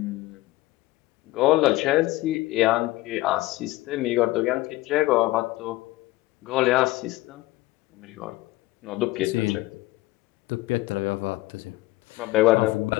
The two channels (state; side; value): quieter; right; 18.4 dB